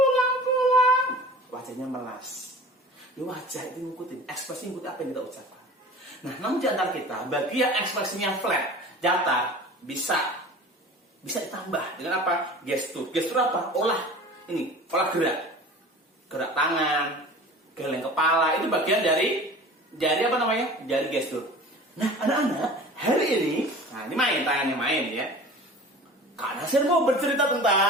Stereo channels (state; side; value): normal; both; correlation 0.40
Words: Wajahnya melas. Ya, wajah itu ngikutin, ekspresi ngikutin apa yang kita ucapkan. Nah, namun di antara kita, bagi yang ekspresinya flat, datar, bisa ditambah dengan apa? Gestur. Gestur apa? Olah gerak tangan, geleng kepala, itu bagian dari apa namanya? Dari gestur. Nah, anak-anak, hari ini, nah ini tangannya main ya. Kak Nasir mau bercerita